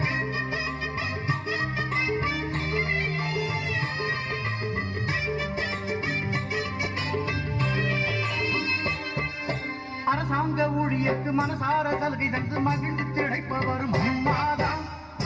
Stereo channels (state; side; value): identical; both; correlation 1.00